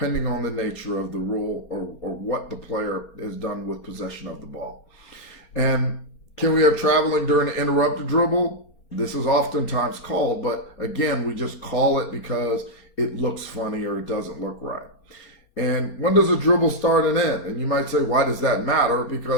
on the nature of the rule or what the player has done with possession of the ball. And can we have traveling during an interrupted dribble? This is oftentimes called, but again, we just call it because it looks funny or it doesn't look right. And when does a dribble start and end? And you might say, why does that matter?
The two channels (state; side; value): late; right; 4.3 ms